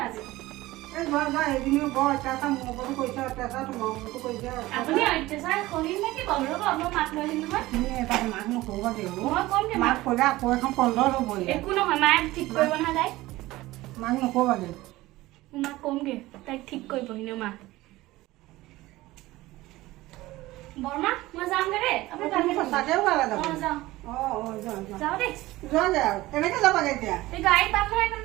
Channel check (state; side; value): quieter; left; 18.2 dB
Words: এই ঘৰত যা সেইখিনিও বৰ অত্যাচাৰ মোৰ ওপৰতো কৰিছে অত্যাচাৰ তোমাৰ ওপৰতো কৰিছে আপুনি অত্যাচাৰ কৰিম নেকি বাৰু ৰ'ব মই মাক লৈ আহিম নহয় তুমি এটা মাক নকৰিবা দেউ মই কম দে মাক ক'লে আকৌ এখন কন্দল হ'ব একো নহয় মায়ে ঠিক কৰিব নহয় তাইক মাক নকৰিবা দেউ মাক কমগে তাইক ঠিক কৰিব এনেও মা বৰমা মই যামগে দেই আপুনি তুমি সঁচাকে ওলালে যাব যাওঁ যোৱা যাওঁ দেই যোৱাগে আৰু কেনেকে যাবাগে এতিয়া এই গাড়ী পাম নহয়